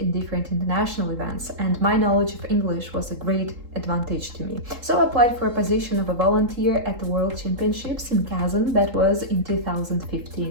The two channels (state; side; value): late; left; 3.8 ms